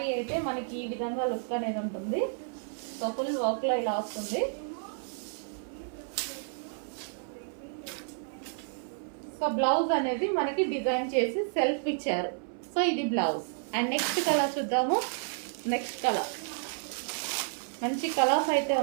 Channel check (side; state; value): left; silent; 57 dB below the other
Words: అయితే మనకి ఈ విధంగా లుక్ అనేది ఉంటుంది. సో ఫుల్ వర్క్ లో ఇలా వస్తుంది. సో బ్లౌజ్ అనేది మనకి డిజైన్ చేసి సెల్ఫ్ ఇచ్చారు. సో ఇది బ్లౌజ్. అండ్ నెక్స్ట్ కలర్ చూద్దాము. నెక్స్ట్ కలర్ మంచి కలర్స్ అయితే